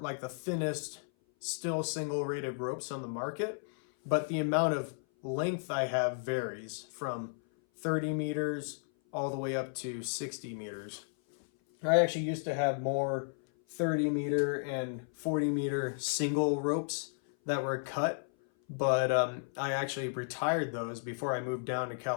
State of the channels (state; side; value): silent; right; 55 dB below the other